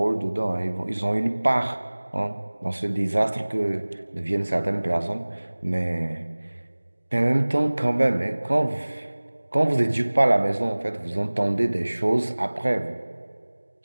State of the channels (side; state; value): both; inverted; correlation -1.00